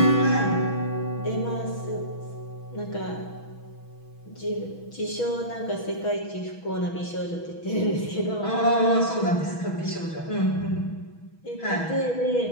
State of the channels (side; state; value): right; late; 6.2 ms